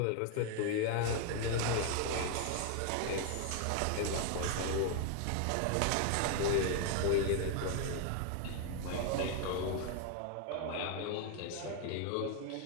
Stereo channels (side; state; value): both; different; correlation 0.01